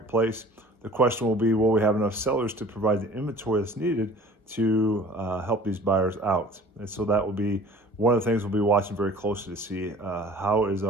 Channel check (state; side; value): normal; both; correlation 0.47